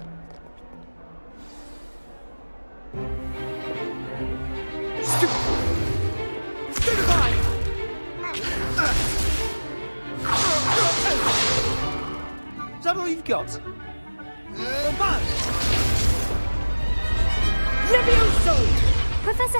got? Levioso! Professor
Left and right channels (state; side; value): inverted; both; correlation -1.00